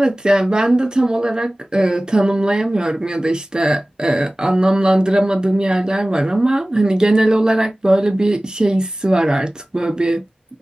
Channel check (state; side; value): normal; both; correlation 0.98